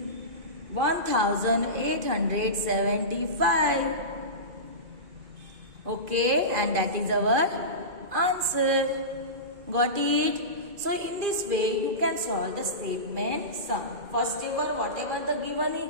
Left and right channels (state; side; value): late; left; 2.5 ms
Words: 1875. Okay, and that is our answer. Got it? So in this way you can solve the statement sum. First of all, whatever the given is,